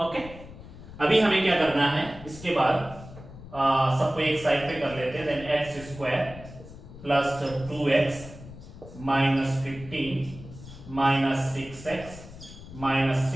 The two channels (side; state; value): left; noise; rumble, 16 dB below the sound